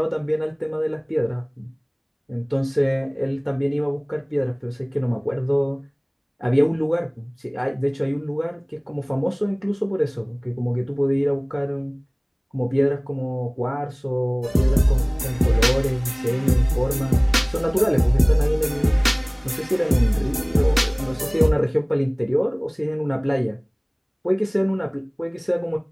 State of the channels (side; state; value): both; identical; correlation 1.00